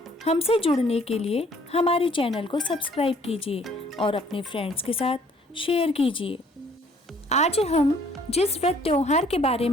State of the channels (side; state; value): both; normal; correlation 0.60